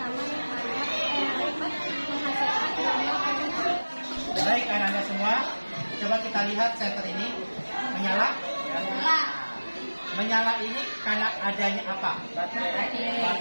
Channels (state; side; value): inverted; both; correlation -1.00